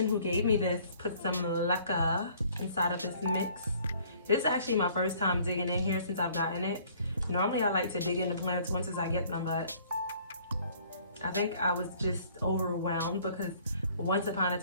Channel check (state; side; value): inverted; both; correlation -0.57